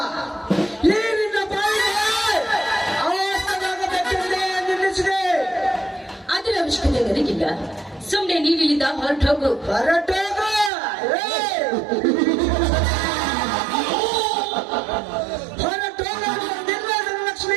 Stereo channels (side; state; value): left; drops out; at 10.7 s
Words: ಈ ನಿನ್ನ ಬಾಯಿಗೆ ಅವಸ್ಥೆಯಾಗಬೇಕೆಂದೇ ನಿಲ್ಲಿಸಿದೆ. ಅದರ ಅವಶ್ಯಕತೆ ನನಗಿಲ್ಲ. ಸುಮ್ಮನೆ ನೀವಿಲ್ಲಿದ್ದ ಹೊರಟೋಗು.